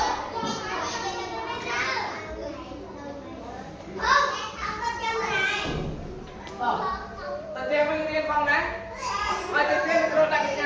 tự tiên mình riêng phòng đấy mà tự tiên mình đặt cái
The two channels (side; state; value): both; identical; correlation 1.00